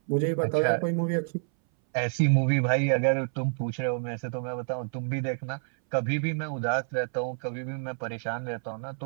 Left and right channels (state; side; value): silent; left; 59 dB below the other